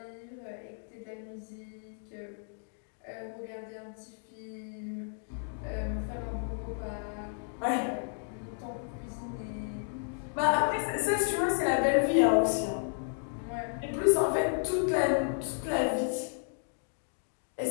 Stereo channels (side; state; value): right; silent; digital silence